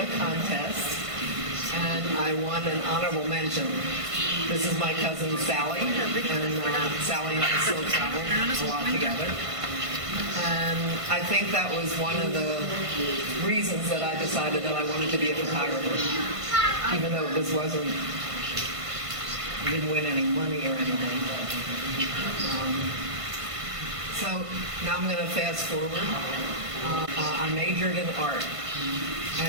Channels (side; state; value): left; late; 1.5 ms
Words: contest, and I won an honorable mention. This is my cousin Sally, and Sally and I still travel a lot together. And I think that was one of the reasons that I decided that I wanted to be a photographer, even though this wasn't, I didn't win any money or anything. So now I'm going to fast forward. I majored in art,